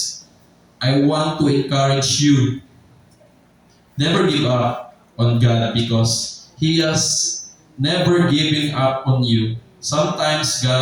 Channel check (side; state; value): both; identical; correlation 1.00